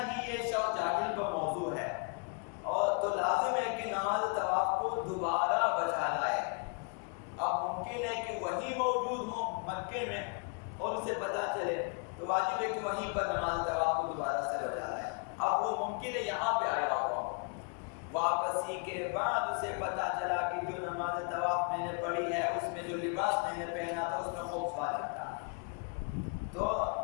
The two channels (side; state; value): right; quieter; 37.1 dB